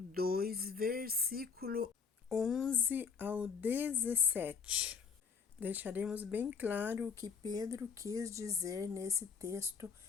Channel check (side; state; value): right; quieter; 5.9 dB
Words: versículo 11 ao 17. Deixaremos bem claro o que Pedro quis dizer nesse texto